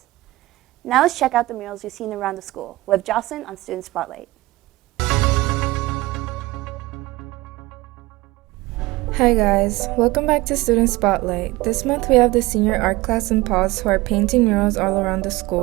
Now let's check out the murals we've seen around the school with Jocelyn on Student Spotlight. Hi guys, welcome back to Student Spotlight. This month we have the senior art class in Pause who are painting murals all around the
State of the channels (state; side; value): quieter; left; 19.9 dB